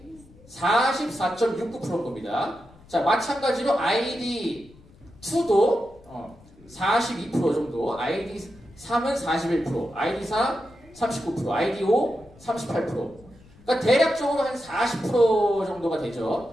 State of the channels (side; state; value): left; noise; rumble, 25 dB below the sound